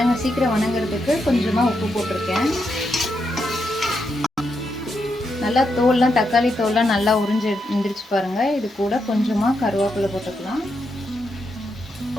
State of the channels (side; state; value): both; normal; correlation 0.83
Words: சீக்கிரம் வணங்குறதுக்கு கொஞ்சமாக உப்பு போட்டிருக்கேன். நல்லா தோல்லாம், தக்காளி தோல்லாம் நல்லா உறிஞ்சு எழுந்திரிச்சு பாருங்கள். இது கூட கொஞ்சமாக கருவேப்பிலை போட்டுக்கலாம்.